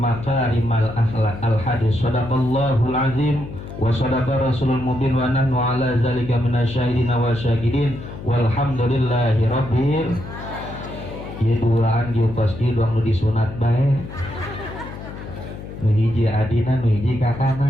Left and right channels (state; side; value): noise; left; hum, 11 dB below the sound